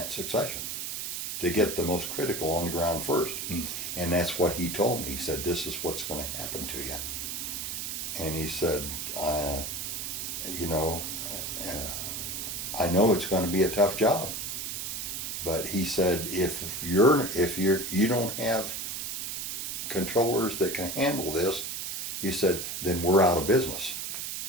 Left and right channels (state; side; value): noise; right; hiss, 4 dB below the sound